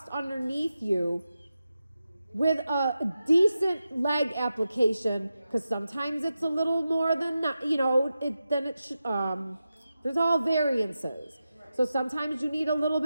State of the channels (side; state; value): both; inverted; correlation -0.91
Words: underneath you with a decent leg application, because sometimes it's a little more than there's all variances. So sometimes you need a little